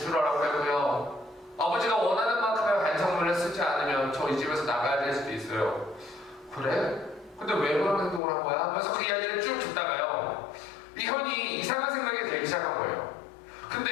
하고요, 아버지가 원하는 만큼의 반성문을 쓰지 않으면 저 이 집에서 나가야 될 수도 있어요. 그래? 근데 왜 그런 행동을 한 거야? 하면서 그 이야기를 쭉 듣다가요, 이 형이 이상한 생각이 들기 시작한 거예요.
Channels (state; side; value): drops out; right; at 8.2 s